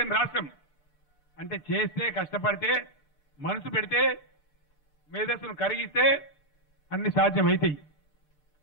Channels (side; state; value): right; late; 6.7 ms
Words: రాష్ట్రం. అంటే చేస్తే, కష్టపడితే, మనసు పెడితే, మేధస్సును కరిగిస్తే అన్ని సాధ్యమవుతాయి.